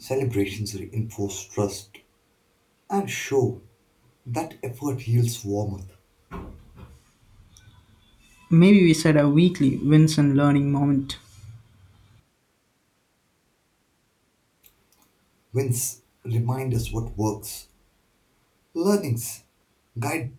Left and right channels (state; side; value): identical; both; correlation 1.00